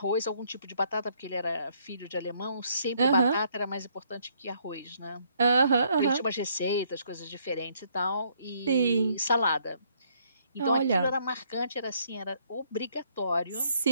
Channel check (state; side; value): inverted; both; correlation -0.68